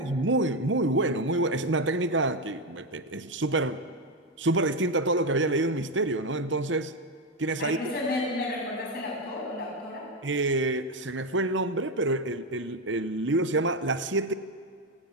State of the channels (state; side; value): normal; both; correlation 0.09